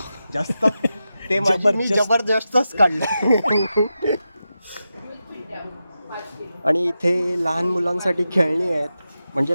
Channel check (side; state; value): both; inverted; correlation -0.90